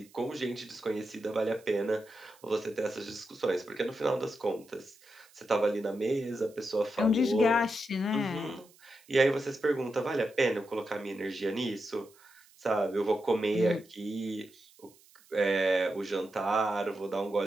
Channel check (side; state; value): right; noise; hiss, 27 dB below the sound